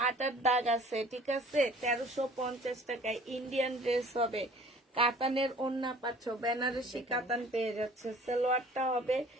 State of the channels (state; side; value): normal; both; correlation 0.50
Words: 8 হাত দাগ আছে, ঠিক আছে, 1350 টাকায়। ইন্ডিয়ান ড্রেস হবে, কাতানের ওড়না পাচ্ছ, বেনারসি কাতান পেয়ে যাচ্ছে। সালোয়ারটা হবে,